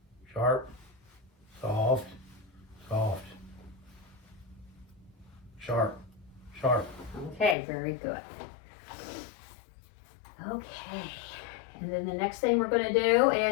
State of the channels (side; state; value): right; drops out; at 7.6 s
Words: Sharp. Soft. Soft. Sharp. Sharp. Okay, very good. Okay. And then the next thing we're going to do